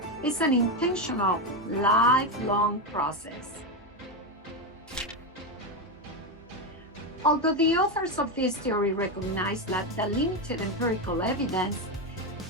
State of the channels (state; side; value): normal; both; correlation 0.10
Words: is an intentional, lifelong process. Although the authors of this theory recognize that the limited empirical evidence,